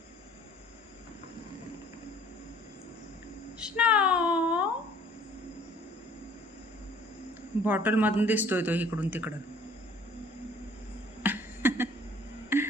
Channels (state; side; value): normal; both; correlation 0.54